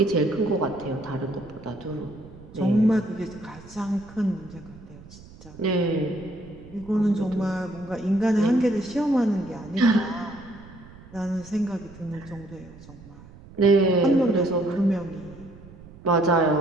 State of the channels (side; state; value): right; noise; rumble, 20 dB below the sound